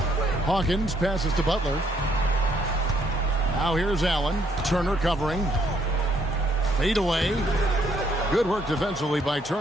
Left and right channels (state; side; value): normal; both; correlation 0.69